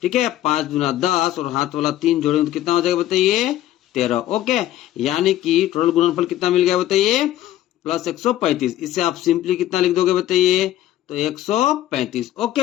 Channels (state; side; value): quieter; right; 13.4 dB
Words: ठीक है, 5 दूना 10 और हाथ वाला 3 जोड़ेंगे तो कितना हो जाएगा बताइए? 13। ओके, यानी कि टोटल गुणनफल कितना मिल गया बताइए? प्लस 135। इससे आप सिंपली कितना लिख दोगे बताइए? तो 135।